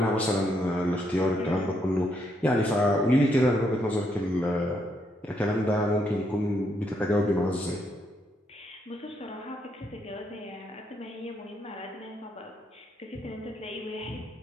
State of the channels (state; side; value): normal; both; correlation 0.76